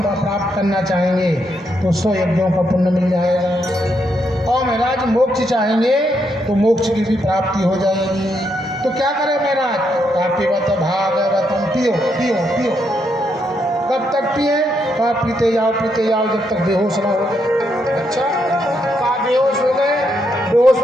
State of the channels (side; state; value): both; normal; correlation 0.78